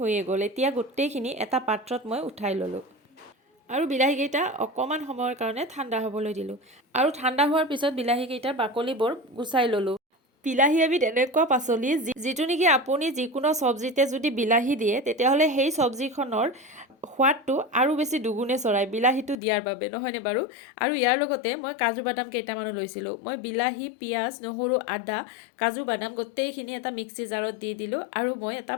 গ'ল। এতিয়া গোটেইখিনি এটা পাত্ৰত মই উঠাই ল'লোঁ আৰু বিলাহীকেইটা অকণমান সময়ৰ কাৰণে ঠাণ্ডা হ'বলৈ দিলোঁ আৰু ঠাণ্ডা হোৱাৰ পিছত বিলাহীকেইটাৰ বাকলিবোৰ গুচাই ল'লোঁ। বিলাহী এবিধ এনেকুৱা পাচলি যিটো নেকি আপুনি যিকোনো চব্জিতে যদি বিলাহী দিয়ে তেতিয়াহ'লে সেই চব্জিখনৰ সোৱাদটো আৰু বেছি দুগুণে চৰায় বিলাহীটো দিয়াৰ বাবে, নহয়নে বাৰু? আৰু ইয়াৰ লগতে মই কাজু বাদাম কেইটামানো লৈছিলোঁ। মই বিলাহী, পিঁয়াজ, নহৰু, আদা, কাজু বাদাম গোটেইখিনি এটা মিক্সি জাৰত দি দিলোঁ আৰু মই এটা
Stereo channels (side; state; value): right; drops out; at 19.4 s